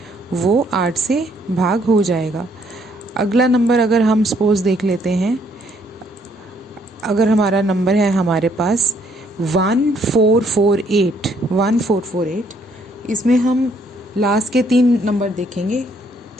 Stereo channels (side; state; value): both; normal; correlation 0.67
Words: वो 8 से भाग हो जाएगा। अगला नंबर अगर हम सपोज देख लेते हैं, अगर हमारा नंबर है हमारे पास 1448, इसमें हम लास्ट के 3 नंबर देखेंगे,